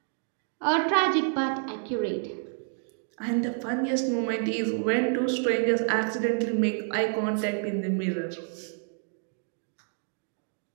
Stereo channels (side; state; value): left; silent; 59 dB below the other